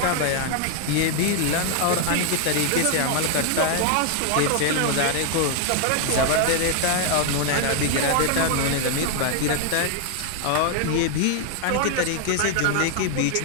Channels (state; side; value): different; both; correlation 0.00